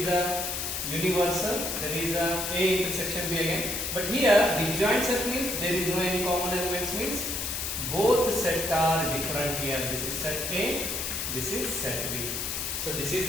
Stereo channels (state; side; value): noise; left; hiss, 3 dB below the sound